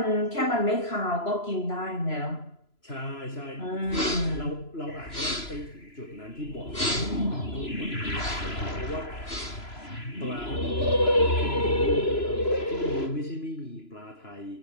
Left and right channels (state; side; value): late; right; 3.0 ms